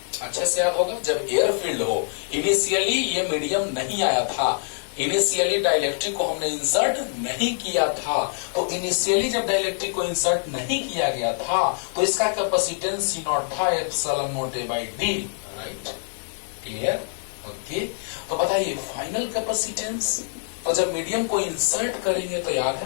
अच्छे से याद होगा, जब एयर फील्ड हो, इनिशियली ये मीडियम नहीं आया था, इनिशियली डाइलेक्ट्रिक को हमने इंसर्ट नहीं किया था, तो इनिशियली जब डाइलेक्ट्रिक को इंसर्ट नहीं किया गया था तो इसका कैपेसिटेंस सी नॉट था epsilon naught A by D, right, clear, okay. तो बताइए फाइनल कैपेसिटेंस, तो जब मीडियम को इंसर्ट करेंगे तो याद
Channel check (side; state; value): right; silent; digital silence